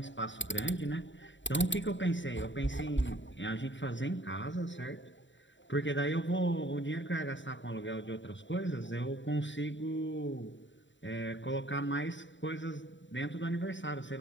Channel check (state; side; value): late; right; 0.54 ms